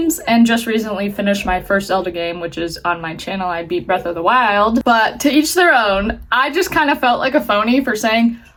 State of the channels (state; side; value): identical; both; correlation 1.00